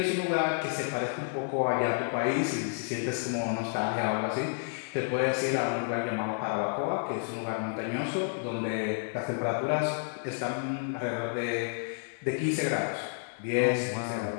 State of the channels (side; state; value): right; silent; 58 dB below the other